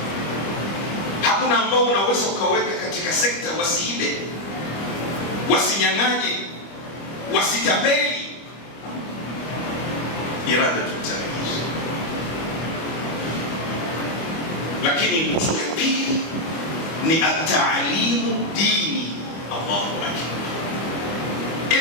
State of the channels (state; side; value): late; right; 25 ms